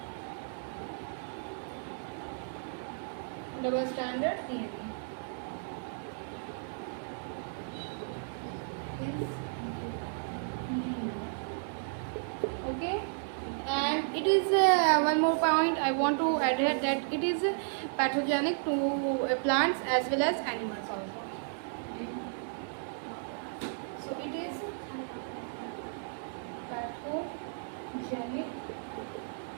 Double stranded DNA is linear. Okay. And it is one more point I want to add here, that it is pathogenic to plants as well as animals also. So it is pathogenic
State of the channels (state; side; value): silent; left; digital silence